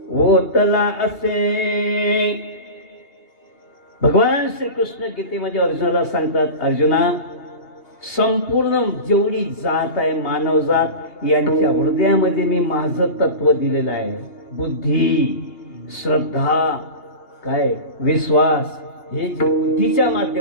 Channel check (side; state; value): right; late; 2.8 ms